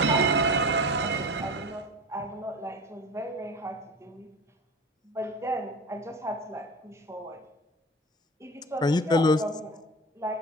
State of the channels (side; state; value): both; normal; correlation 0.33